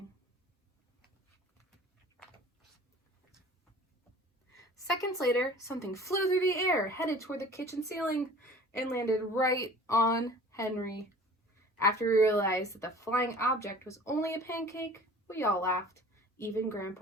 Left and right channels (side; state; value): both; normal; correlation 0.45